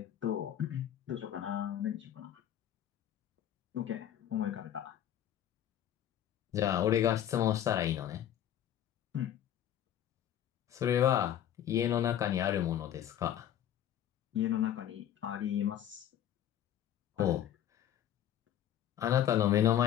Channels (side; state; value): right; quieter; 10.8 dB